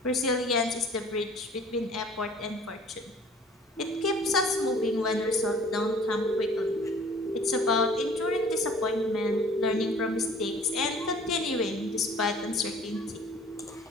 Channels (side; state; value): both; normal; correlation 0.51